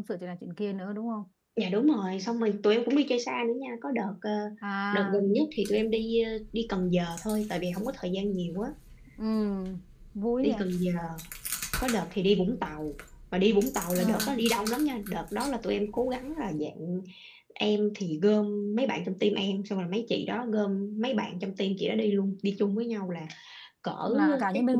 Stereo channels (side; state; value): both; identical; correlation 1.00